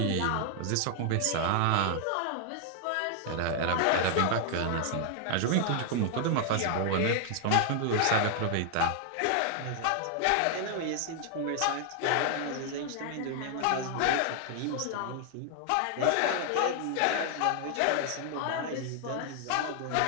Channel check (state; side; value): different; both; correlation 0.00